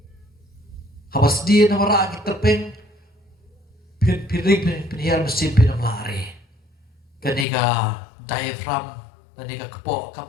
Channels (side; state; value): right; drops out; at 7.5 s